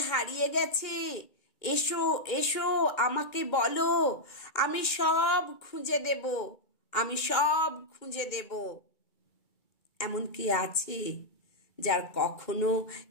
হারিয়ে গেছে, এসো এসো আমাকে বলো, আমি সব খুঁজে দেব, আমি সব খুঁজে দেব। এমন কি আছে যার কখনো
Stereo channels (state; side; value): late; right; 2.1 ms